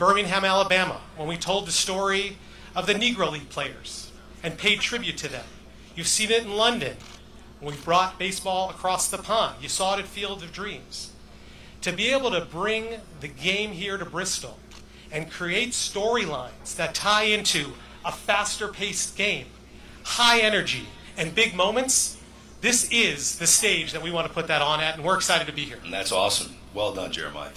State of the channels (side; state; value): both; identical; correlation 1.00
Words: Alabama, when we told the story of the Negro League players and paid tribute to them. You've seen it in London when we've brought baseball across the pond. You saw it at Field of Dreams. To be able to bring the game here to Bristol and create storylines that tie into a faster-paced game, high energy, and big moments, this is the stage that we want to put that on at, and we're excited to be here. And that's awesome. Well done, Jeremiah.